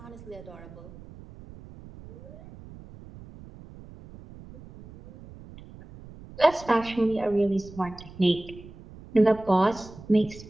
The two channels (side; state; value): right; noise; rumble, 18 dB below the sound